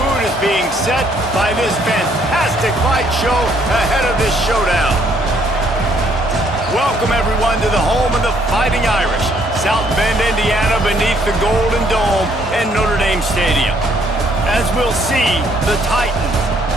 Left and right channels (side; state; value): left; noise; hum, 18 dB below the sound